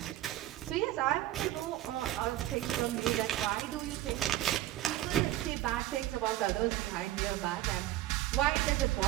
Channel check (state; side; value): quieter; left; 14.7 dB